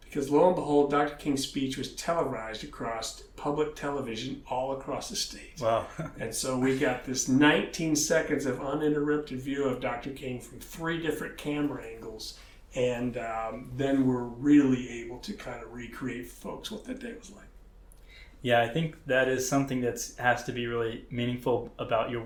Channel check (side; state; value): both; identical; correlation 1.00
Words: Because lo and behold, Dr. King's speech was televised across public television all across the state. Wow. And so we got this 19 seconds of uninterrupted view of Dr. King from 3 different camera angles. And then we're really able to kind of recreate for folks what that day was like. Yeah, I think that is something that has to be really meaningful about your